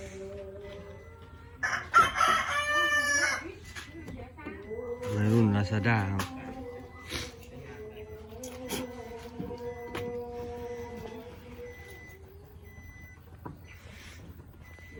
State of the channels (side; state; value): both; identical; correlation 1.00